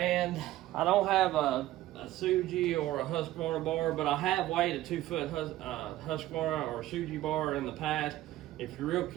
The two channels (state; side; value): quieter; left; 15.2 dB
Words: I don't have a Suji or a Husqvarna bar, but I have weighed a 2 foot Husqvarna or Suji bar in the past. If you're real